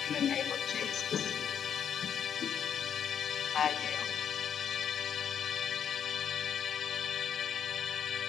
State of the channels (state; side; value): quieter; right; 8.4 dB